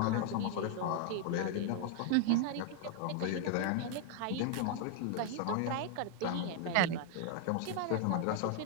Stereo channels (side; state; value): both; different; correlation 0.00